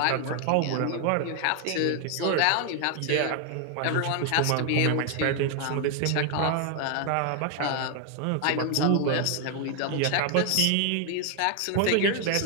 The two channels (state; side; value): different; both; correlation 0.00